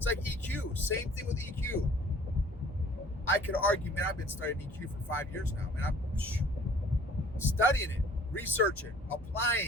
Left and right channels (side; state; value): both; normal; correlation 0.52